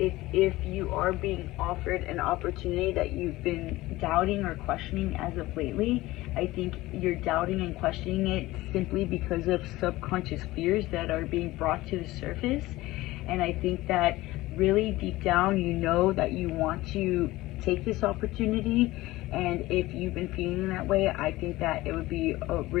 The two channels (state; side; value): quieter; right; 18.4 dB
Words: if you are being offered an opportunity that you've been doubting or questioning as of lately, I think you're doubting and questioning it simply because of subconscious fears that are being brought to the surface. And I think that really deep down you know that you want to take this opportunity, and if you've been feeling that way, I think that it would be a